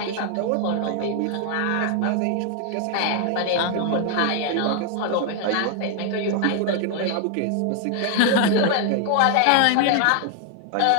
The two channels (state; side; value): different; both; correlation 0.00